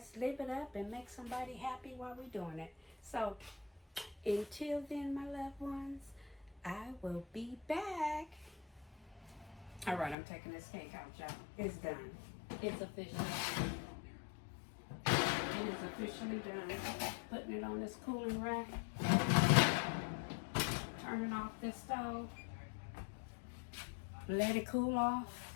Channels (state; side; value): drops out; right; at 10.2 s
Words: live it up and make somebody happy while we're doing it. So until then, my loved ones, I will be back. All right, I'm taking this cake out, y'all. It's done. It's official. It is officially done. Putting it on this cooling rack. Turning off this stove. Let it cool